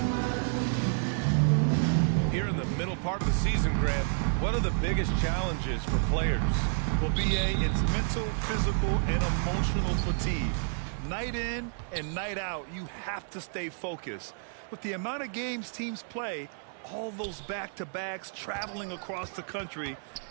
Part of the season, Grant, what are the biggest challenges for players? Well, BA, it's mental, physical, and emotional fatigue. Night in and night out, you have to stay focused. With the amount of games teams play, all those back-to-backs, traveling across the country,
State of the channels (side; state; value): left; silent; digital silence